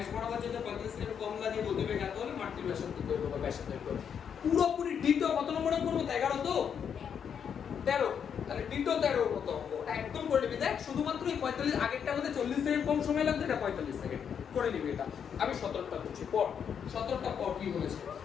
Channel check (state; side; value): quieter; right; 7.7 dB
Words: বরাবর যেতে 35 সেকেন্ড কম লাগে, গতিবেগ এত হলে মাটির ব্যাসার্ধ দৈর্ঘ্য বা ব্যাসার্ধ দৈর্ঘ্য। পুরোপুরি ডিটো কত নম্বরে করব? 11 তো 13। তাহলে ডিটো 13 কত অঙ্ক একদম করে নিবি। দেখ শুধুমাত্র এই 45, আগেরটা মধ্যে 40 সেকেন্ড কম সময় লাগবে, এটা 45 সেকেন্ড করে নিবি। এটা আমি 17টা করছি, পর 17টা পর কি বলেছে